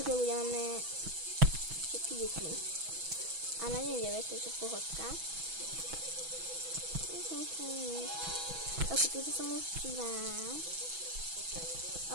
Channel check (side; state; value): left; late; 6.1 ms